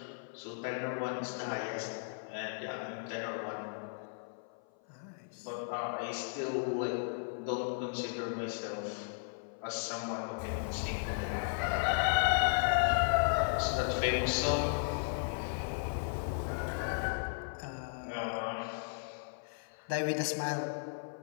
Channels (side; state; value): right; silent; 54 dB below the other